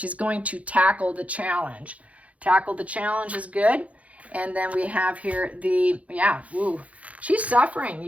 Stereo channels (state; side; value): late; left; 0.066 ms